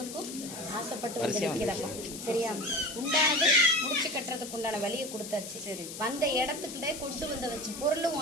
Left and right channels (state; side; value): noise; left; hiss, 10 dB below the sound